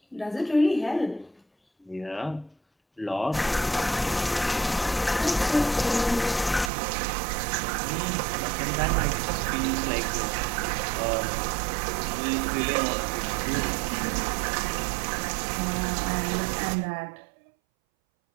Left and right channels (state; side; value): drops out; left; at 6.7 s